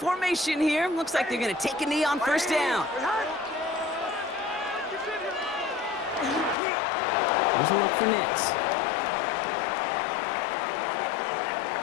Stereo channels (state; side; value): drops out; right; at 6.6 s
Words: here. Looks like they're going to take a knee on first down. Here's a look for Nix.